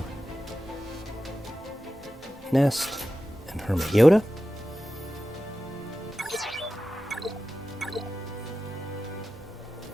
Nest and Hermit Yoda.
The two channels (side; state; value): both; normal; correlation 0.93